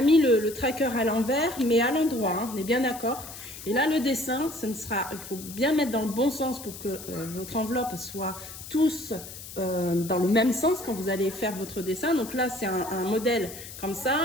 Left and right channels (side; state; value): left; noise; hiss, 13 dB below the sound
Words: le tracker à l'envers, mais à l'endroit. Hein, on est bien d'accord. Et là, le dessin, il faut bien mettre dans le bon sens pour que votre enveloppe soit tous dans le même sens quand vous allez faire votre dessin. Donc là, c'est un modèle comme ça.